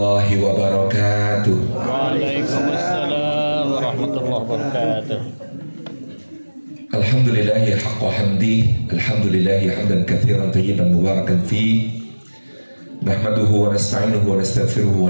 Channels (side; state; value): both; inverted; correlation -1.00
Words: wabarakatuh. Waalaikumsalam warahmatullahi wabarakatuh. Alhamdulillahi haqqa hamdi, alhamdulillahi hamdan katsiran tayyiban mubarakan fi. Nahmaduhu wa nasta'inuhu wa nastaghfiruhu